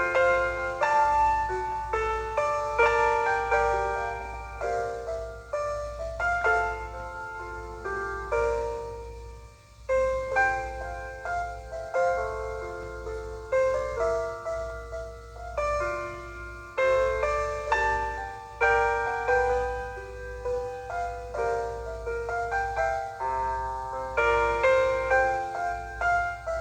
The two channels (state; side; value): identical; both; correlation 1.00